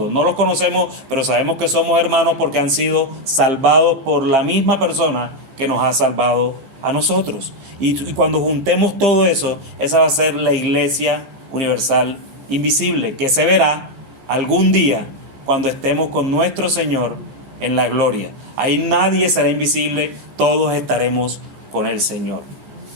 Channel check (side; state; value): left; late; 15 ms